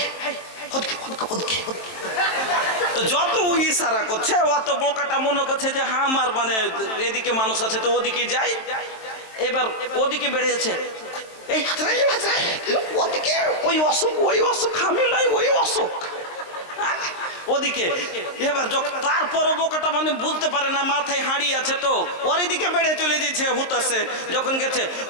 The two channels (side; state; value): right; late; 23 ms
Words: তো যত ইশারা করছে অত বোকাটা মনে করছে যে হ্যাঁ আমার মানে এদিকে মানুষ আছে তো ওদিকে যাই। এবার ওদিকে বেড়ে যাচ্ছে, এই ওদিকে ওই অসুখ আমি লাই ওই অসুখ ওদিকে। এবার তারপর বোকাটা মানে বুঝতে পারে না, মাথায় হাঁড়ি আছে তো ওর এদিকে বেড়ে চলে যাচ্ছে হুতাছে। যখন গেছে